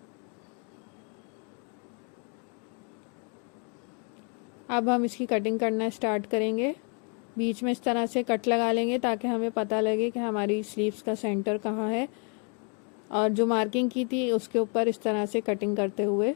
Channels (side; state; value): right; quieter; 38.1 dB